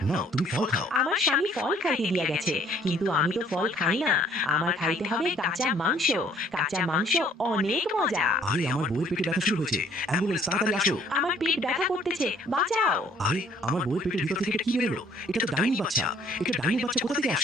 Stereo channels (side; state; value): both; normal; correlation 0.59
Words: নাও তুমি ফল খাও। আমার স্বামী ফল খাইতে দিয়া গেছে, কিন্তু আমি তো ফল খাই না। আমার খাইতে হবে কাঁচা মাংস। কাঁচা মাংস অনেক মজা। আরে আমার বউয়ের পেটে ব্যথা শুরু হয়েছে, অ্যাম্বুলেন্স তাড়াতাড়ি আসো। আমার পেট ব্যথা করতেছে, বাঁচাও। আরে আমার বউয়ের পেটের ভিতর থেকে এটা কি বেরোলো? এটা তো ডাইনি বাচ্চা। এটা ডাইনি বাচ্চা কোথা থেকে